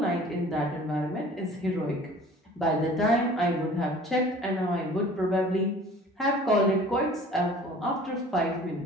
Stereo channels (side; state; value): both; normal; correlation 0.47